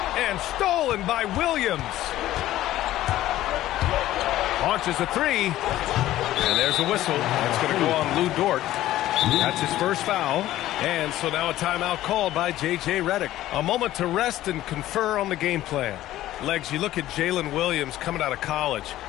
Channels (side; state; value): right; quieter; 14.4 dB